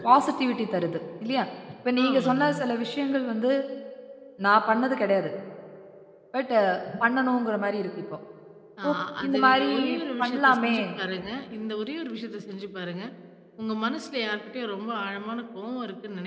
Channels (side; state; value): both; identical; correlation 1.00